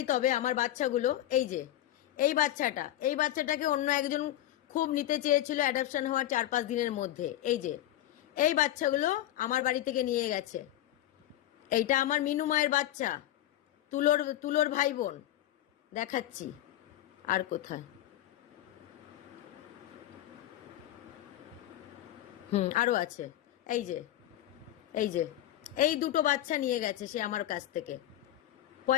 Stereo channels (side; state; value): right; quieter; 13.4 dB